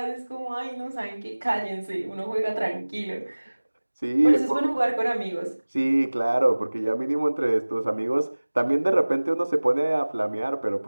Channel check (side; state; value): both; inverted; correlation -1.00